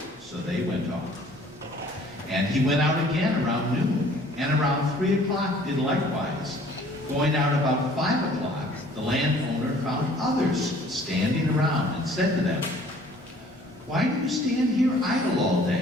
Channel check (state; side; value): normal; both; correlation 0.55